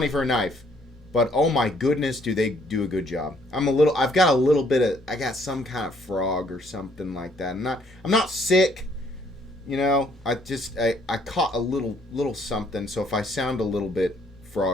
for a knife, but oh my goodness, do they do a good job. I got some kind of frog or something like that. I'm not sick, you know. I caught a little something, so if I sound a little bit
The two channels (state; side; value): normal; both; correlation 0.65